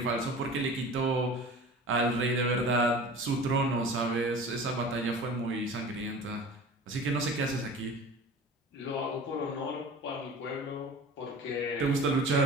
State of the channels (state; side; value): normal; both; correlation 0.39